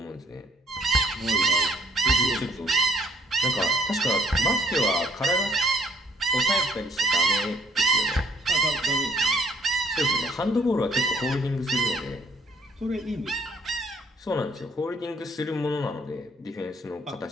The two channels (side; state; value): both; normal; correlation 0.63